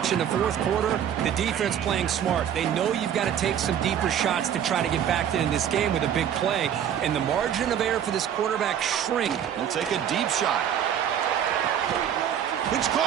in the fourth quarter. The defense playing smart. They know you've got to take some deeper shots to try to get back in this game with a big play. And the margin of error for this quarterback shrink. He'll take a deep shot. It's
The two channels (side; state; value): left; quieter; 9.4 dB